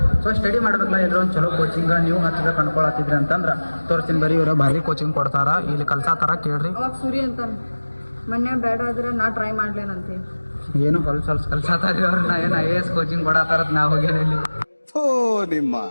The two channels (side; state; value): both; inverted; correlation -1.00